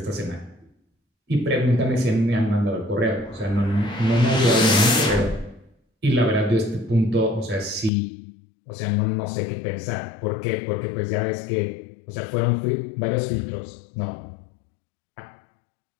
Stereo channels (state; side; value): drops out; right; at 7.9 s